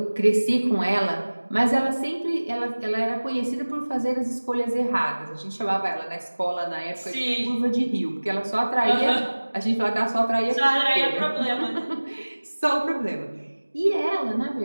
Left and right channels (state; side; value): inverted; both; correlation -1.00